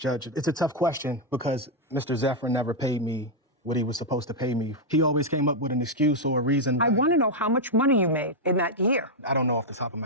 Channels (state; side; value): normal; both; correlation -0.01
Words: it's a tough question because Mr. Zephyrin never paid me what he was supposed to pay me. He always came up with an excuse or a reason. I want to know how much money you made in that year. I don't know off the top of